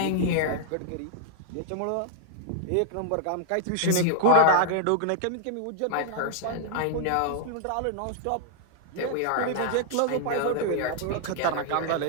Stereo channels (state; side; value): different; both; correlation -0.01